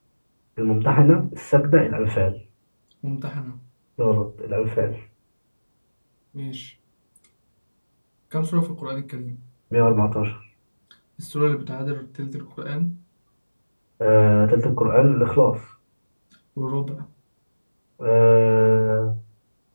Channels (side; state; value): both; inverted; correlation -1.00